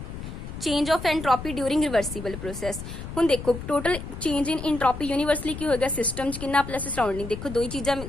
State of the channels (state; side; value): noise; left; rumble, 9 dB below the sound